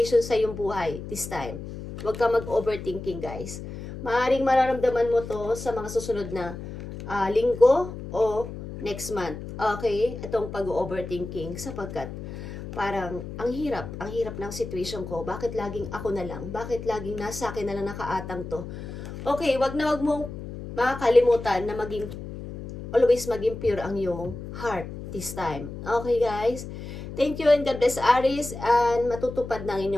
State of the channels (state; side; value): noise; left; hum, 10 dB below the sound